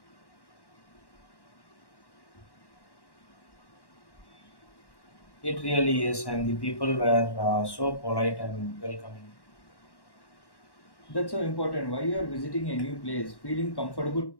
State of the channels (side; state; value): right; late; 1.1 ms